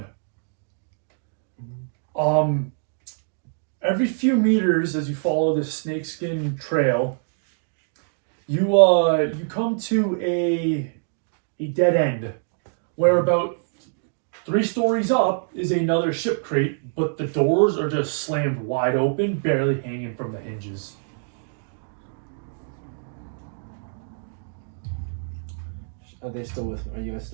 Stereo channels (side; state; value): left; silent; digital silence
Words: Every few meters as you follow this snakeskin trail, you come to a dead end where about 3 stories up is another ship crate, but the doors are just slammed wide open, barely hanging from the hinges. Are they still with me? Are you guys